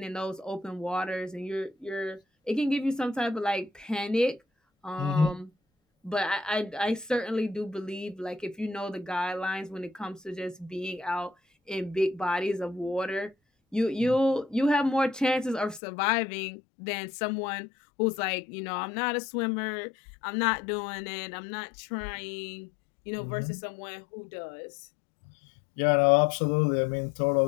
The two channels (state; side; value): drops out; right; at 15.8 s